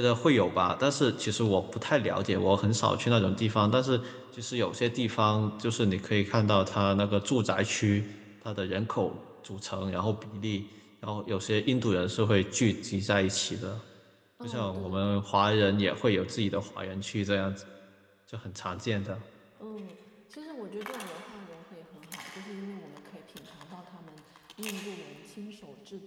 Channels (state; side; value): identical; both; correlation 1.00